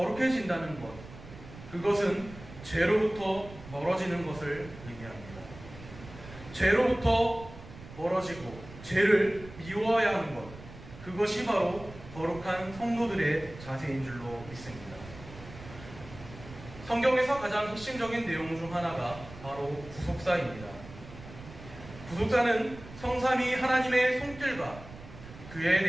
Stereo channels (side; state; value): right; noise; rumble, 16 dB below the sound